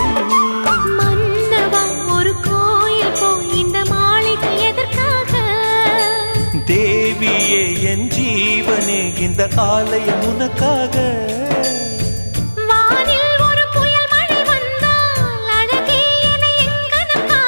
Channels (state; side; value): inverted; both; correlation -1.00